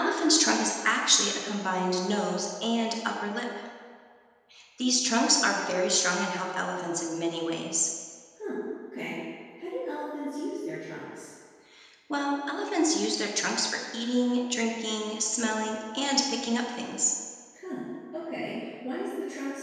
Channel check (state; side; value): identical; both; correlation 1.00